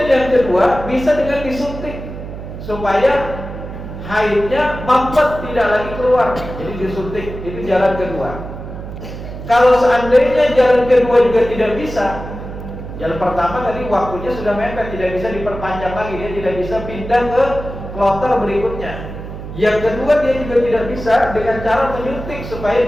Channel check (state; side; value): noise; right; hum, 10 dB below the sound